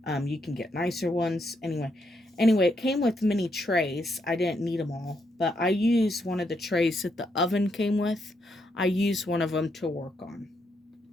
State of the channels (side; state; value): both; normal; correlation 0.78